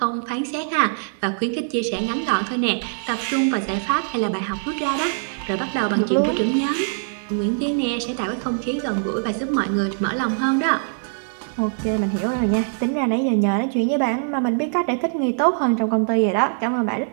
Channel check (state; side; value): silent; left; digital silence